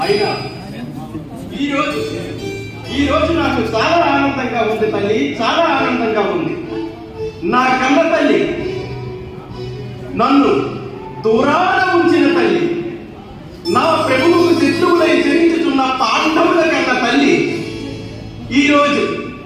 అయినా ఈ రోజు నాకు చాలా ఆనందంగా ఉంది తల్లి, చాలా ఆనందంగా ఉంది. నా కన్న తల్లి, నన్ను దూరాన ఉంచిన తల్లి, నా ప్రభువుకు శత్రువులై జరించుతున్న పాండవుల కన్న తల్లి ఈరోజు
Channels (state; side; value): identical; both; correlation 1.00